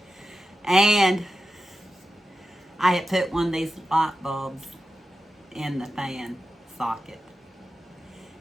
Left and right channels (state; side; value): normal; both; correlation 0.91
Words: And I had put one of these light bulbs in the fan socket.